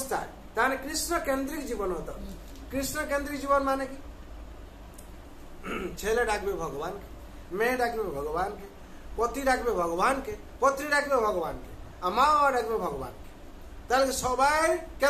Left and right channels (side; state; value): both; identical; correlation 1.00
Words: তাহলে কৃষ্ণ কেন্দ্রিক জীবন হতো। কৃষ্ণ কেন্দ্রিক জীবন মানে কি, ছেলে ডাকবে ভগবানকে, মেয়ে ডাকবে ভগবানকে, পতি ডাকবে ভগবানকে, পত্নী ডাকবে ভগবানকে, মা ডাকবে ভগবানকে। তাহলে সবাই